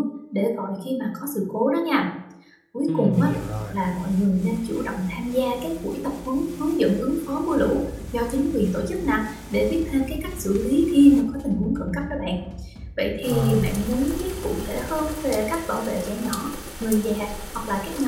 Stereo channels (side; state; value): both; identical; correlation 1.00